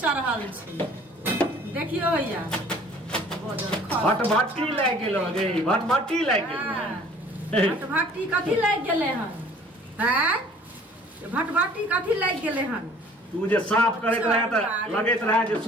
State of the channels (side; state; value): both; normal; correlation 0.52